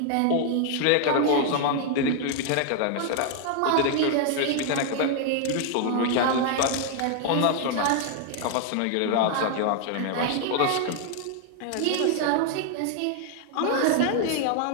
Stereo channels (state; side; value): different; both; correlation 0.00